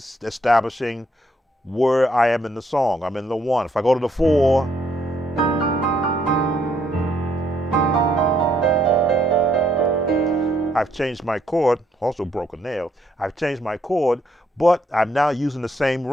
establishing where I am in the song. I'm in the one. If I go to the four, I've changed my chord, also broke a nail. I've changed my chord, but I'm now using the same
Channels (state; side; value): normal; both; correlation 0.71